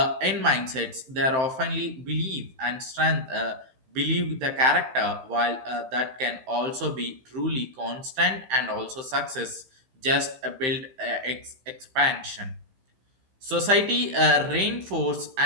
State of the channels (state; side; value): late; left; 15 ms